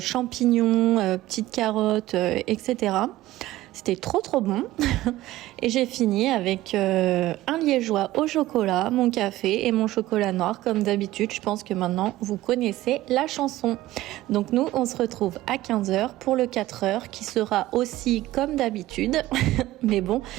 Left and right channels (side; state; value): left; quieter; 16.2 dB